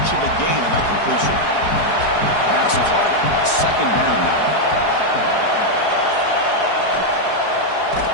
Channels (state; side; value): late; right; 4.8 ms